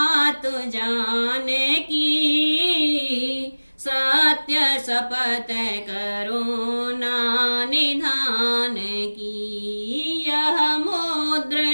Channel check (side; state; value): both; inverted; correlation -1.00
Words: जाने की, सत्य शपथ करुणा निधान की। यह